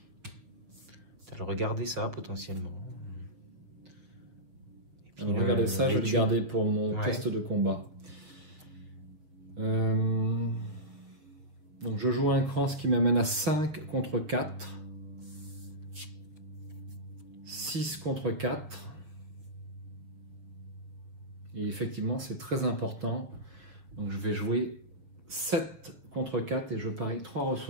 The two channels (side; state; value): left; late; 6.9 ms